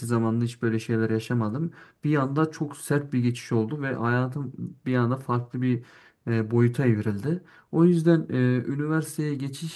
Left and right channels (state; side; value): identical; both; correlation 1.00